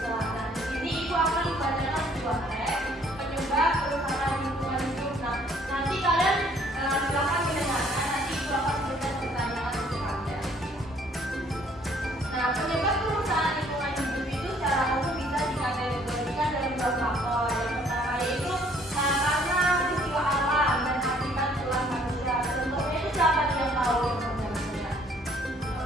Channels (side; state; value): both; normal; correlation 0.61